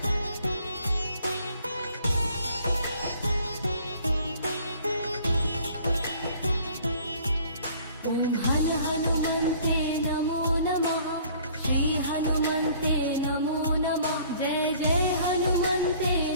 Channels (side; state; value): both; inverted; correlation -0.55